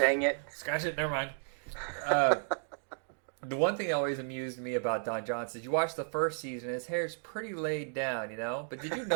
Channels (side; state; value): left; silent; digital silence